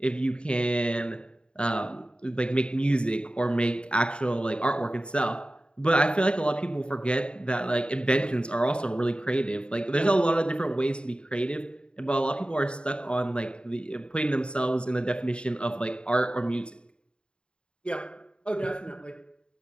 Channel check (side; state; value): right; late; 0.053 ms